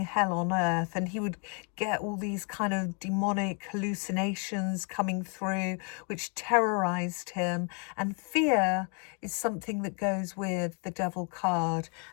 on earth, and he would get all these kind of demonic hallucinations coming through which terrorized him. And fear is something that goes with the devil card,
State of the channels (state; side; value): quieter; right; 38.2 dB